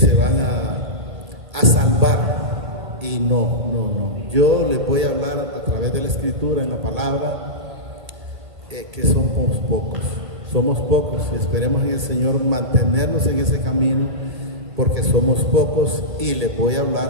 salvar, y no. Yo les voy a hablar a través de la Escritura, en la palabra, que somos pocos. Esperemos en el Señor mantenernos en ese camino, porque somos pocos, y les voy a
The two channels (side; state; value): left; late; 1.8 ms